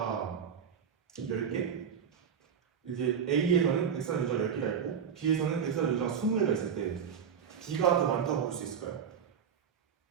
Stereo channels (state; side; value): quieter; left; 7.4 dB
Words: 10개? 이제 A에서는 X라는 유전자가 10개가 있고 B에서는 X라는 유전자가 20개가 있을 때 B가 더 많다고 볼 수 있을까요?